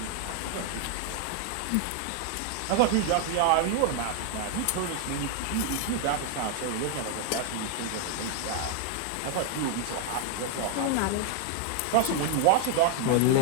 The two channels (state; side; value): different; both; correlation 0.00